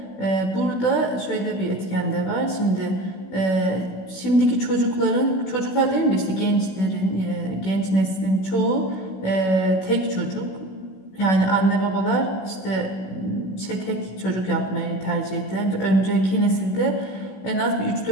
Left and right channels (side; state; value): right; late; 16 ms